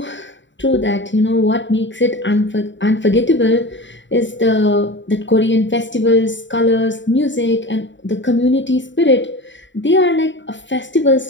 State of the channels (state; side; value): late; right; 0.54 ms